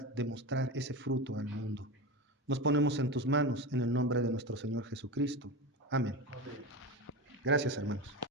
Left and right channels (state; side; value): normal; both; correlation 0.23